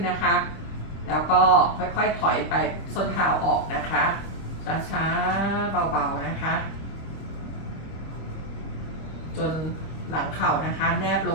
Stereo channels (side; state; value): right; late; 25 ms